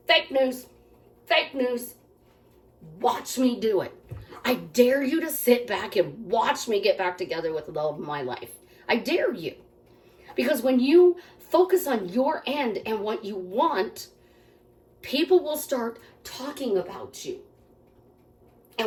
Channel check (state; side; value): identical; both; correlation 1.00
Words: Fake news. Fake news. Watch me do it. I dare you to sit back and watch me get back together with the love of my life. I dare you. Because when you focus on your end and what you want, people will start talking about you.